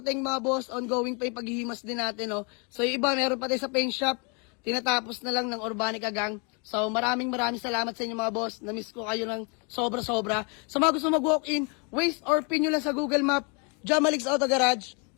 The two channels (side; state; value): right; quieter; 34.5 dB